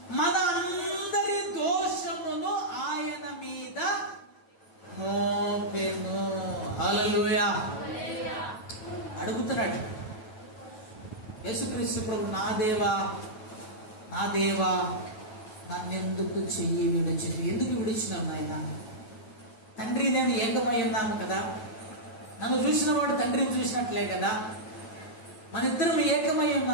మన అందరి దోషమును ఆయన మీద మోపెను. హల్లెలూయా. అడుగుతున్నాడు యేసుక్రీస్తు ప్రభు, నా దేవా నన్నెందుకు చెయ్యి విడిచినవి? ఎందుకు విడిచినావు నాయన? తండ్రి నేను ఏకమై ఉన్నాము కదా, నన్ను చూసిన వాడు తండ్రిని చూసినట్లే కదా, మన ఇద్దరం ఏకమై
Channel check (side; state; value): right; late; 9.2 ms